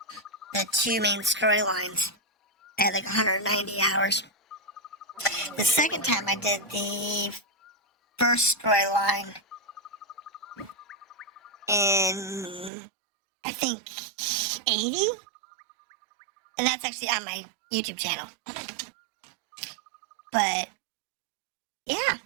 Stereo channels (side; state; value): left; drops out; at 12.7 s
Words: the two main storylines. I had like 190 hours. The second time I did the first storyline in, I think, 80? And that's actually on my YouTube channel. But Yeah,